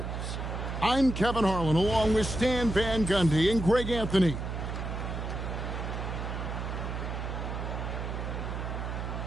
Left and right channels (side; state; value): right; noise; hum, 4 dB below the sound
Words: I'm Kevin Harlan, along with Stan Van Gundy and Greg Anthony.